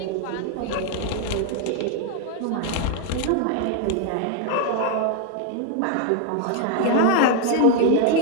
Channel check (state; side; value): different; both; correlation 0.01